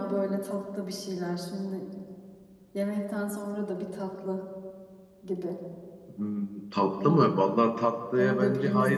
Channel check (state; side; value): identical; both; correlation 1.00